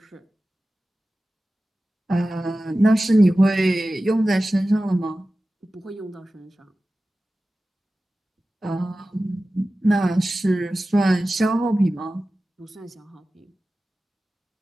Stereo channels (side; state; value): both; normal; correlation 0.95